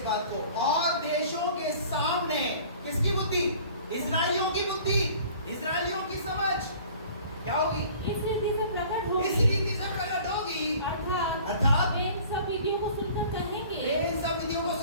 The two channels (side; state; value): both; inverted; correlation -0.48